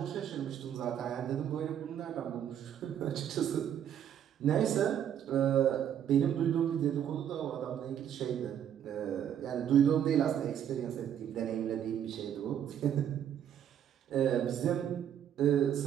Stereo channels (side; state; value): left; quieter; 9.6 dB